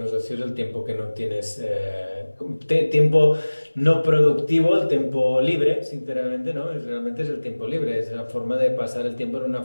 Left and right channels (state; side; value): inverted; both; correlation -1.00